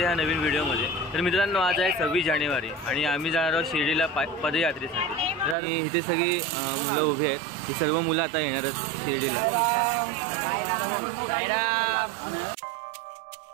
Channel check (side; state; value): left; drops out; at 5.6 s